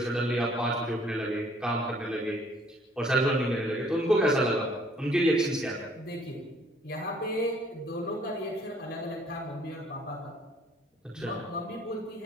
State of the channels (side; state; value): both; normal; correlation 0.60